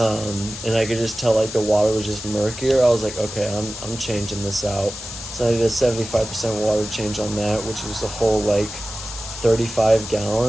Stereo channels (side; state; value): left; noise; hiss, 10 dB below the sound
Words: and I could just tell like the water was just murkier. I was like, okay, I'm changing this out. So I did a 75% water change on that, which was a whole like 35